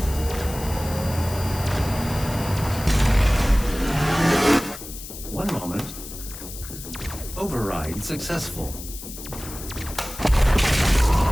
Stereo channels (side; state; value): left; noise; hiss, 12 dB below the sound